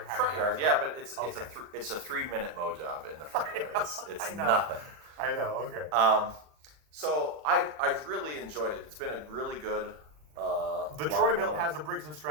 had Front grass. yard, yeah, but it's Okay. it's a 3-minute mow job in the front yard. It's I know. nothing. I know. Okay. So I've really enjoyed it. It's been a really good. The Troy built has a Briggs &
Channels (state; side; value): late; left; 40 ms